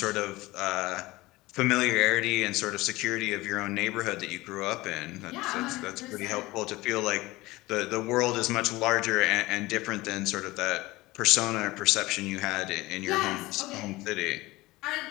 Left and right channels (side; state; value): right; quieter; 19.9 dB